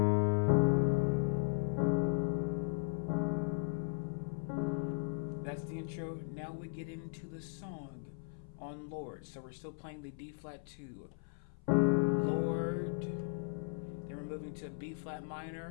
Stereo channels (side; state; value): right; silent; 53 dB below the other